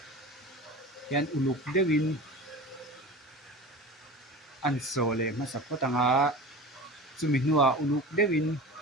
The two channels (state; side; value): normal; both; correlation 0.33